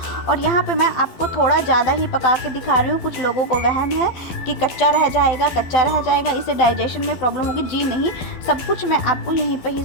और यहाँ पे मैं आपको थोड़ा ज़्यादा ही पका के दिखा रही हूँ। कुछ लोगों को वहम है कि कच्चा रह जाएगा, इसे डाइजेशन में प्रॉब्लम होगी। जी नहीं, सब कुछ मैं आपको यहीं पर ही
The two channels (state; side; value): late; right; 12 ms